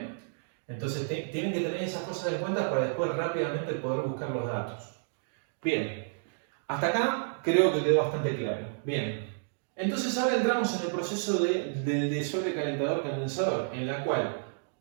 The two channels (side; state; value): left; silent; digital silence